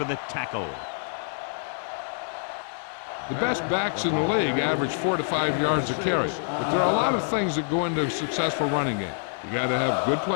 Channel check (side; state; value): right; silent; 61 dB below the other